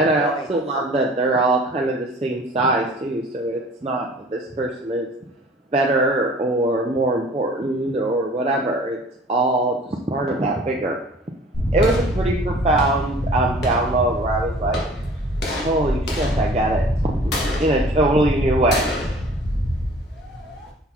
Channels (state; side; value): normal; both; correlation 0.48